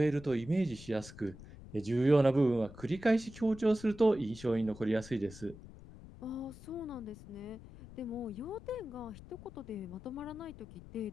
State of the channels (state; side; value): noise; left; rumble, 17 dB below the sound